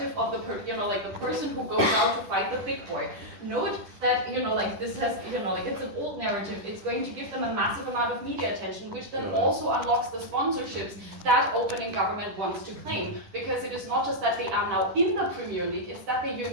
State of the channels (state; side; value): late; left; 10 ms